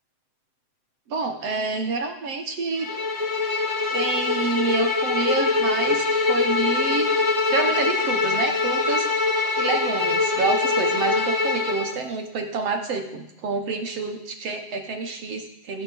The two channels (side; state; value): left; late; 7.7 ms